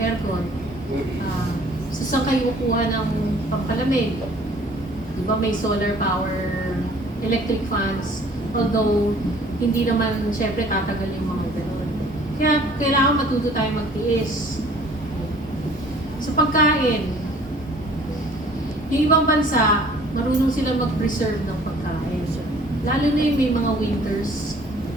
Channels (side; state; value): both; normal; correlation 0.54